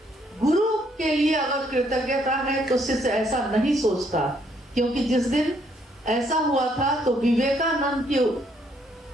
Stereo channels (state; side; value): normal; both; correlation 0.69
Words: गुरु के लिए अगर कृतज्ञता है तो शिष्य ऐसा नहीं सोचता, क्योंकि जिस दिन ऐसा हुआ था तो विवेकानंद की